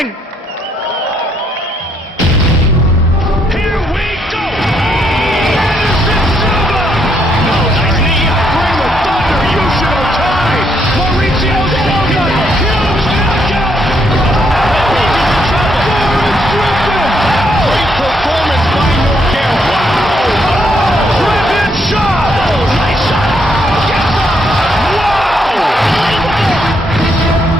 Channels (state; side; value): normal; both; correlation 0.74